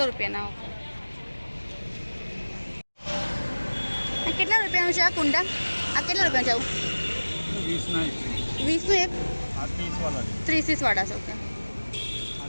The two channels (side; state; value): both; inverted; correlation -1.00